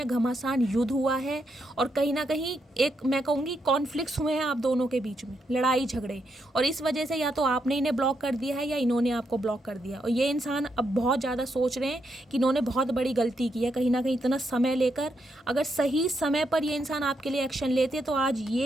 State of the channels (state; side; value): normal; both; correlation 0.80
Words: घमासान युद्ध हुआ है और कहीं ना कहीं एक मैं कहूँगी कॉन्फ्लिक्ट्स हुए हैं आप दोनों के बीच में, लड़ाई झगड़े। और इस वजह से या तो आपने इन्हें ब्लॉक कर दिया है या इन्होंने आपको ब्लॉक कर दिया। और ये इंसान अब बहुत ज़्यादा सोच रहे हैं कि इन्होंने बहुत बड़ी गलती की है कहीं ना कहीं इतना समय लेकर। अगर सही समय पर ये इंसान आपके लिए एक्शन लेते तो आज